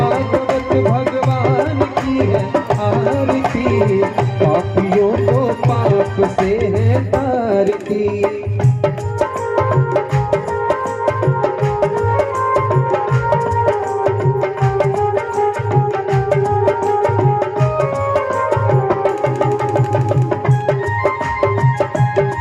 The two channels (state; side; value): identical; both; correlation 1.00